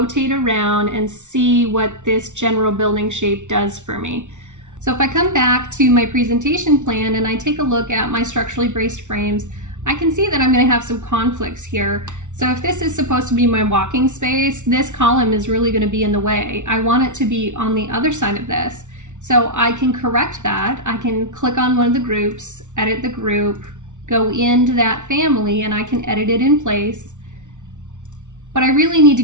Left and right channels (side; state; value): left; late; 0.85 ms